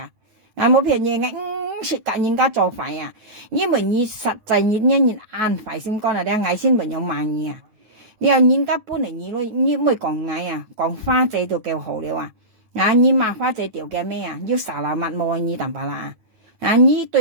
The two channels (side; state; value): left; late; 9.1 ms